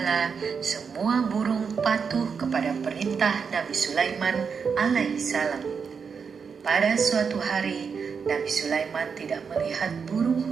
semua burung patuh kepada perintah Nabi Sulaiman alaihissalam. Pada suatu hari, Nabi Sulaiman tidak melihat burung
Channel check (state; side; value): quieter; left; 6.0 dB